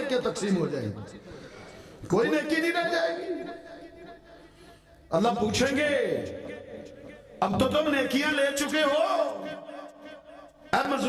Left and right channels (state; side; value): identical; both; correlation 1.00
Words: تقسیم ہو جائیں گی، کوئی نیکی نہیں رہ جائے گی۔ اللہ پوچھیں گے اب تو تم نیکیاں لے چکے ہو، اے